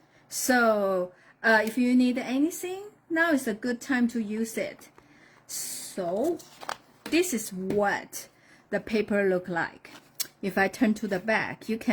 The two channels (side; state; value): both; identical; correlation 1.00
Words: So if you need anything, now is a good time to use it. So this is what the paper look like. If I turn to the back, you